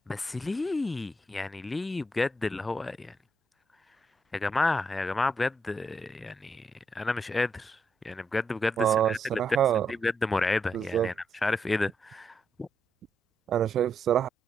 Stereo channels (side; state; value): both; normal; correlation 0.80